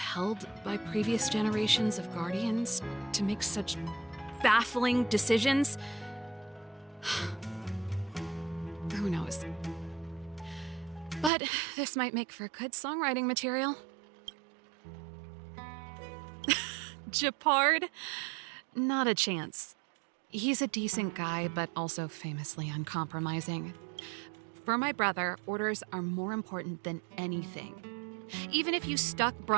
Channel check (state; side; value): drops out; left; at 11.3 s